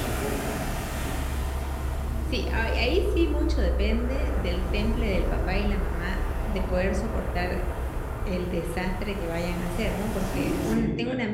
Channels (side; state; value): both; identical; correlation 1.00